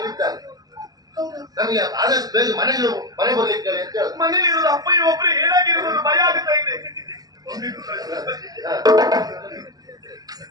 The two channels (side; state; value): left; late; 0.18 ms